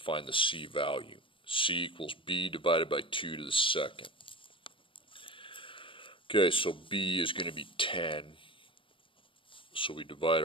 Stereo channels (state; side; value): late; right; 0.25 ms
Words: the c value. C equals b divided by 2 to the second. Okay, so b is going to be 10. So we divide